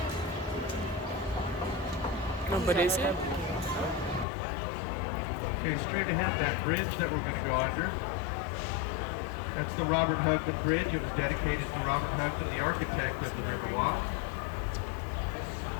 No, but is it? Okay, straight ahead, that bridge that we're going to go under. That's the Robert Hugman Bridge. It was dedicated to Robert Hugman, the architect of the Riverwalk.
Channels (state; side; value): drops out; right; at 4.2 s